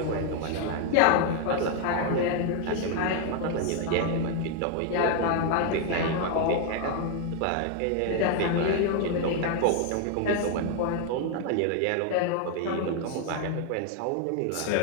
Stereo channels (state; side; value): different; both; correlation 0.00